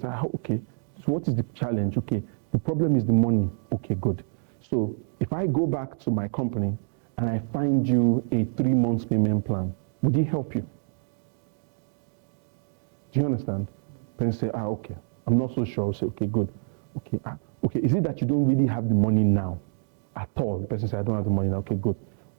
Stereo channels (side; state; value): left; silent; digital silence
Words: okay, so what is the challenge? Okay, the problem is the money. Okay, good. So if I go back to my company and I find you a 3 months payment plan, would it help you? Do you understand? Person say, okay, I'm not so sure. I'll say, okay, good. Okay, okay, is it that you don't really have the money now at all? The person said, I don't have the money now. Okay, good.